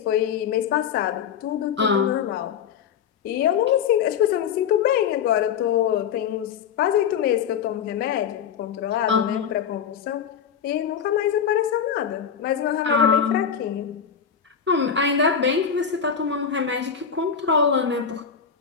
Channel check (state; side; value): quieter; right; 7.5 dB